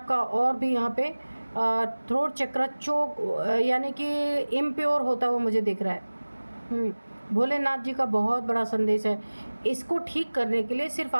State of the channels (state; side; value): inverted; both; correlation -1.00